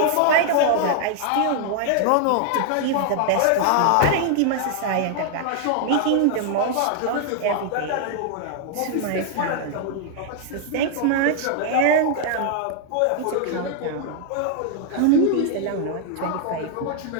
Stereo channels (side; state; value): both; different; correlation 0.00